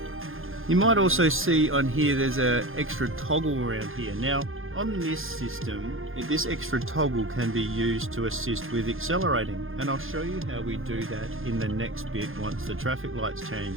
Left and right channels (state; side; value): late; left; 0.60 ms